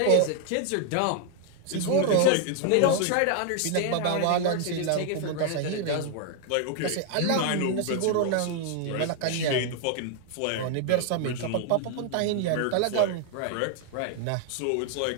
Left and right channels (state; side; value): different; both; correlation 0.00